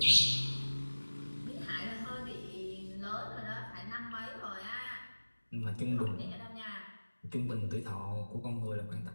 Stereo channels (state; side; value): inverted; both; correlation -1.00